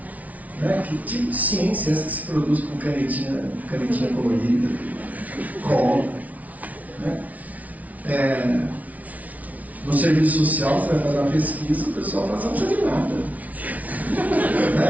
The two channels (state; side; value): late; left; 0.071 ms